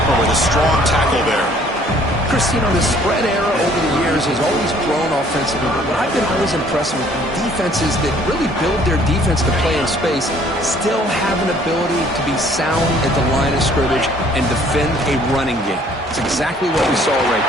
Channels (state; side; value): normal; both; correlation 0.58